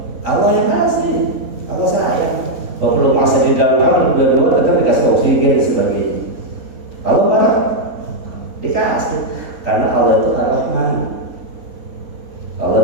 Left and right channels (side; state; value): left; late; 3.9 ms